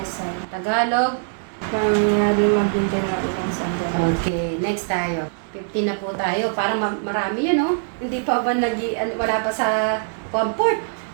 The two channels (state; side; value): silent; left; digital silence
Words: Tagalog. Pangyari maghintay ng ilang sandali. Okay, next tayo. 15 na po tayo. Parang marami yun, no? Hindi pa ba wala pa sa comfort?